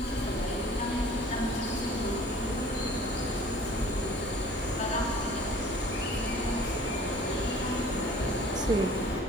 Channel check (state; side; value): normal; both; correlation 0.50